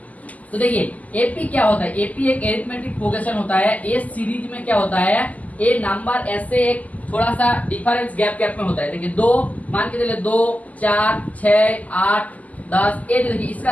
तो देखिए एपी क्या होता है, एपी एक एरिथमेटिक प्रोग्रेशन होता है, एस सीरीज में क्या होता है, ए नंबर ऐसे एक थोड़ा सा डिफरेंस गैप में होता है। देखिए 2 मान के चलिए 2 4 6 8 10, ये देखिए इसका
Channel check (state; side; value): late; right; 0.076 ms